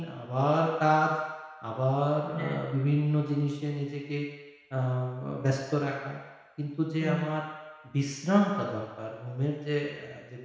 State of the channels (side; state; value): both; identical; correlation 1.00